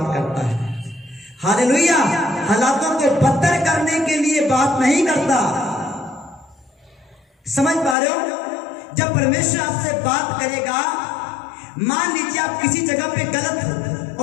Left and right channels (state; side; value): drops out; right; at 8.0 s